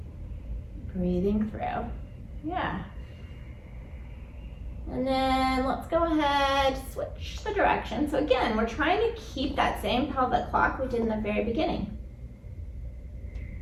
Breathing through. Yeah. And then let's go ahead, switch the direction. So again, we're trying to keep that same pelvic clock we did in the very beginning.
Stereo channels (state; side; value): identical; both; correlation 1.00